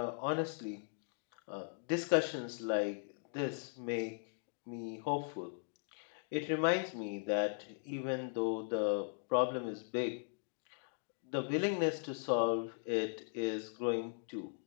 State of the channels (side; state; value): right; silent; digital silence